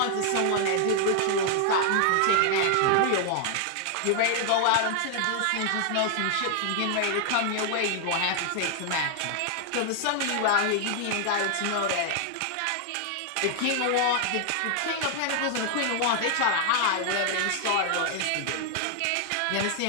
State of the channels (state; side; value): different; both; correlation 0.00